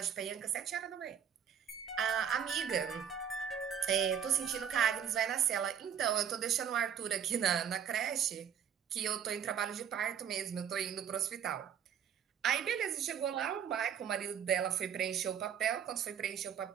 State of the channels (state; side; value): quieter; left; 8.4 dB